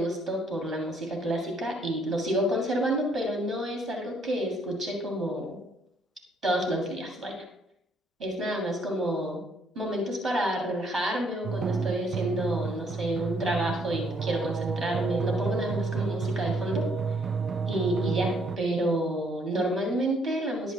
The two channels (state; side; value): normal; both; correlation 0.68